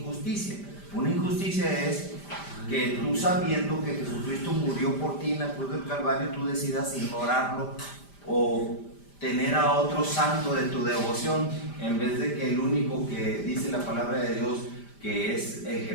Una injusticia es que tú, sabiendo que Jesucristo murió por ti en la cruz del Calvario, tú decidas ignorarlo o tener a otro santo de tu devoción, en vez de que el único que dice la palabra de Dios, que es el que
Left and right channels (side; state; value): right; late; 5.0 ms